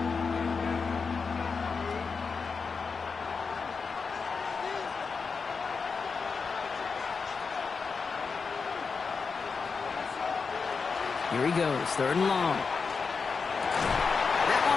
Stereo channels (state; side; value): quieter; right; 5.1 dB